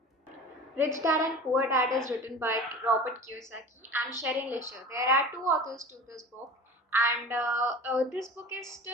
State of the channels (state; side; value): normal; both; correlation 0.37